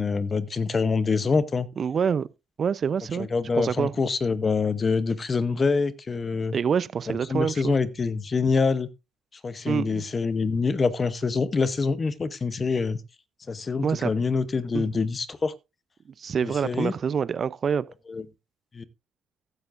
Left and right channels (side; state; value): both; normal; correlation 0.84